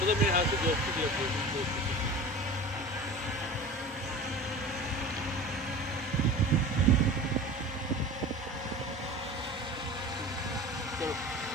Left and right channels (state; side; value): normal; both; correlation 0.36